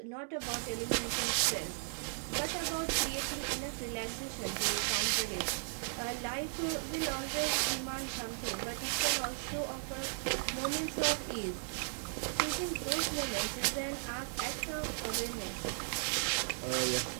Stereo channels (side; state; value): left; silent; digital silence